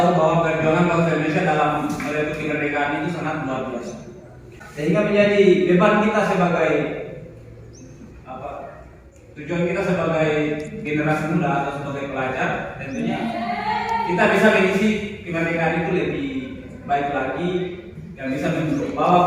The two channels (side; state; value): both; identical; correlation 1.00